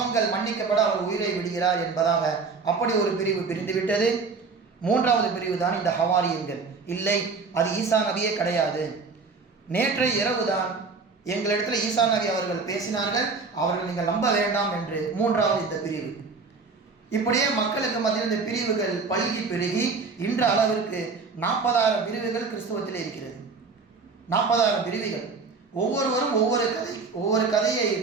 மன்னிக்கப்பட அவர் உயிரை விடுகிறார் என்பதாக அப்படி ஒரு பிரிவு பிரிந்துவிட்டது. மூன்றாவது பிரிவு தான் இந்த ஹவாரியன்கள். இல்லை, அது ஈசா நபியே கிடையாது, நேற்றைய இரவுதான் எங்களிடத்தில் ஈசா நபி அவர்கள் பேசினார்கள், அவர்கள் நீங்கள் நம்ப வேண்டாம் என்று மூன்றாவது இந்த பிரிவு. இப்படியே மக்களுக்கு மத்தியில் இந்த பிரிவுகள் பல்கி பெருகி இன்ற அளவிற்கு 40,000 பிரிவுகள் கிறிஸ்துவத்தில் இருக்கிறது. 40,000 பிரிவுகள். ஒவ்வொருவரும் ஒவ்வொரு கதையை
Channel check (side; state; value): left; quieter; 4.6 dB